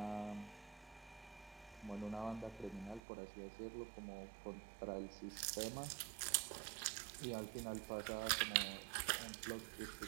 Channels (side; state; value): left; drops out; at 3.0 s